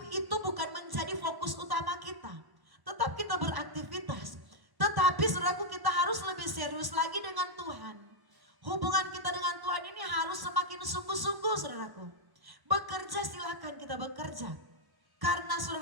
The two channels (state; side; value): late; left; 1.1 ms